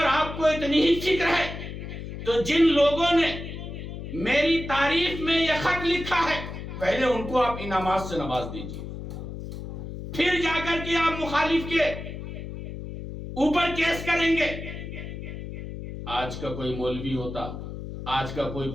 آپ کو اتنی ہی فکر ہے تو جن لوگوں نے میری تعریف میں یہ خط لکھا ہے پہلے ان کو آپ انعامات سے نواز دیجئے، پھر جا کر کے آپ مخالف کے اوپر کیس کریں گے۔ آج کا کوئی مولوی ہوتا، آج کا کوئی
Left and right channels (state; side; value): noise; left; hum, 9 dB below the sound